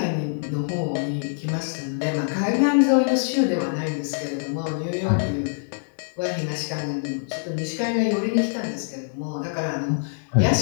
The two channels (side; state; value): right; silent; digital silence